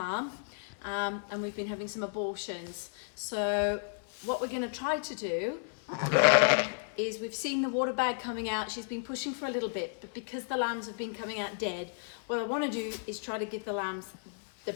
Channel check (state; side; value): silent; right; 56 dB below the other